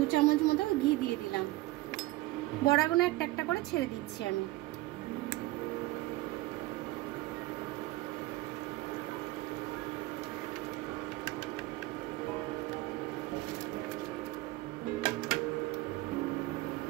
চামচ মতো ঘি দিয়ে দিলাম। বড়াগুলো একটা একটা করে ছেড়ে দিচ্ছি আমি।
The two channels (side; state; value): left; quieter; 18.8 dB